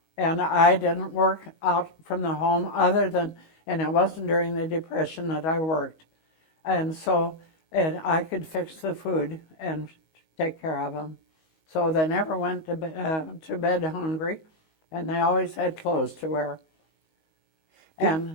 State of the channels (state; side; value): late; right; 19 ms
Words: And I didn't work out from the home and it wasn't during the Depression that I worked. And so I could fix the food and take care of them. So they never went to bed hungry, and they always had clothes to wear.